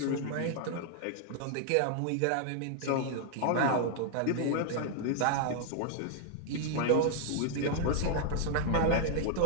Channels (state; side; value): different; both; correlation -0.01